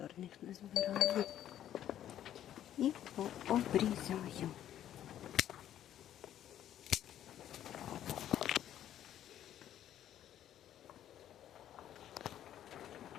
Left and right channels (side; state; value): right; quieter; 11.2 dB